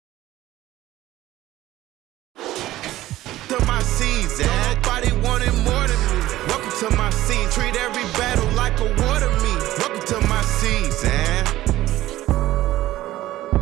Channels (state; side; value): quieter; left; 15.4 dB